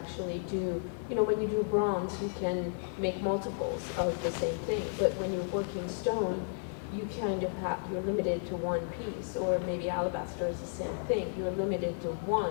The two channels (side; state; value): right; silent; 56 dB below the other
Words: do, when you do bronze, you can make multiples of the same thing, but when you're working stone, you kind of you're limited to one piece, or maybe alabaster is the same thing, you're limited to